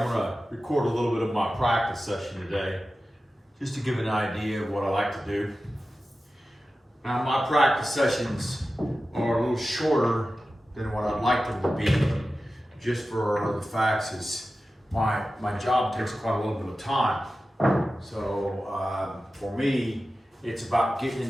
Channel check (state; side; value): normal; both; correlation 0.94